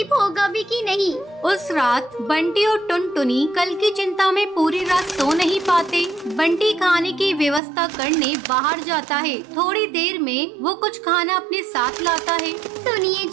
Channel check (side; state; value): left; drops out; at 7.6 s